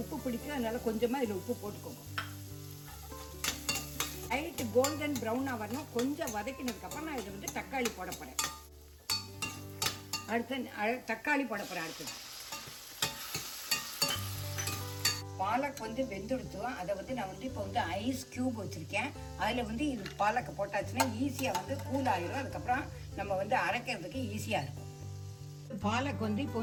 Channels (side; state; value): both; identical; correlation 1.00